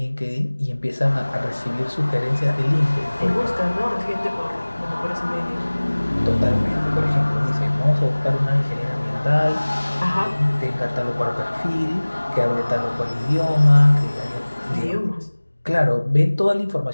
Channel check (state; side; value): inverted; both; correlation -1.00